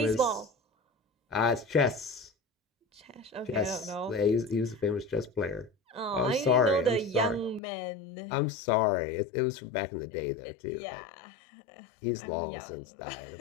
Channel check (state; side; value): drops out; right; at 7.6 s